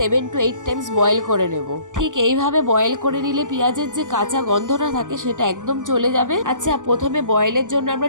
to 8 টাইমস বয়েল করে নেব। ঠিক এইভাবে বয়েল করে নিলে পেঁয়াজের যে কাঁচা গন্ধটা থাকে সেটা একদম চলে যাবে। আচ্ছা, প্রথমে বয়েলের জন্য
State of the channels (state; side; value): late; left; 0.87 ms